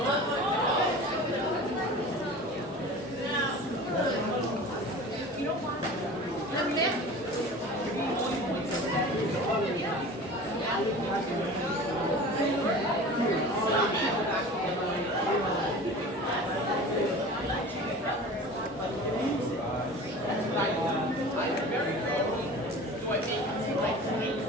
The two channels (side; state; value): both; normal; correlation 0.38